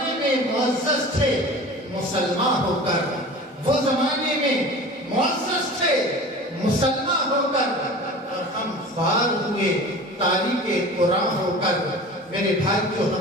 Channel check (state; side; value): normal; both; correlation 0.38